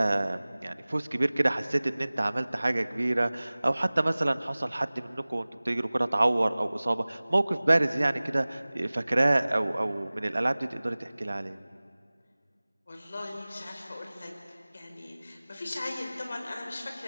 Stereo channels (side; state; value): both; inverted; correlation -0.99